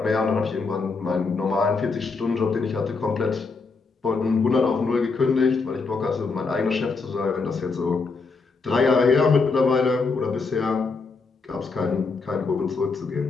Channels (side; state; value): right; quieter; 4.4 dB